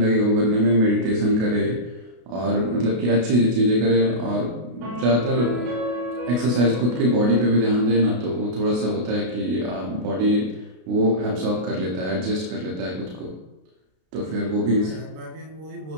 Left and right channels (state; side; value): late; left; 33 ms